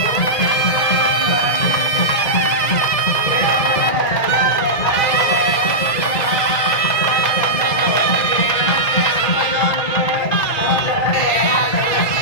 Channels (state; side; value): late; right; 2.0 ms